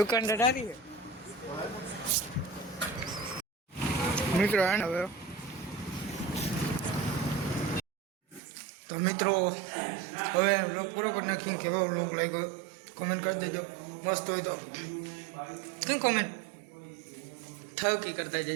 ઢારી મિત્રો આને હવે તો મિત્રો હવે વ્લોગ પૂરો કરી નાખ્યું. કેવો વ્લોગ લાગ્યો કોમેન્ટ કરી દેજો. મસ્ત હોય તો કઈ કોમેન્ટ થકી કરતા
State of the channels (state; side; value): drops out; left; at 8.4 s